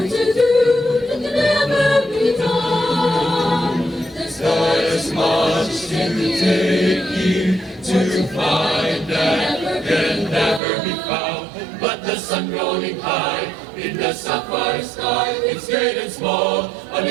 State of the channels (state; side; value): drops out; left; at 10.6 s